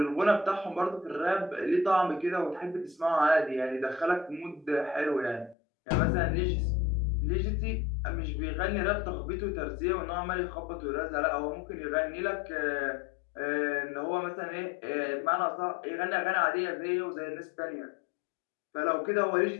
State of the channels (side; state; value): right; drops out; at 5.6 s